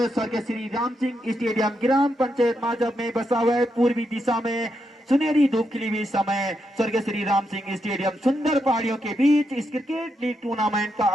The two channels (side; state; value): both; normal; correlation 0.82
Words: स्वर्गीय श्री राम सिंह स्टेडियम ग्राम पंचायत माजब में बसा हुआ है। पूर्वी दिशा में सुनहरी धूप खिली हुई समय स्वर्गीय श्री राम सिंह स्टेडियम सुंदर पहाड़ियों के बीच इस क्रिकेट लीग टूर्नामेंट का